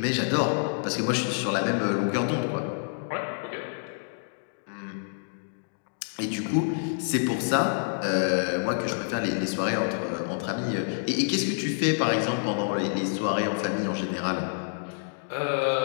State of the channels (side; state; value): right; silent; digital silence